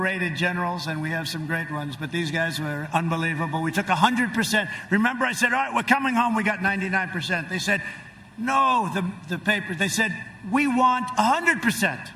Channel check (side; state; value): both; identical; correlation 1.00